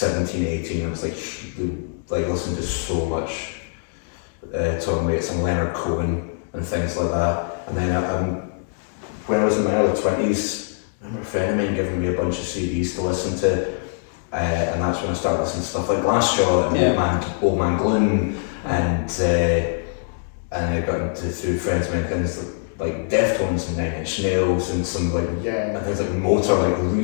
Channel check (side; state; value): right; silent; digital silence